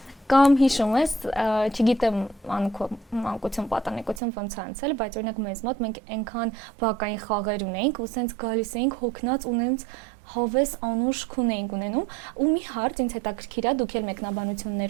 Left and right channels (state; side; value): drops out; left; at 4.2 s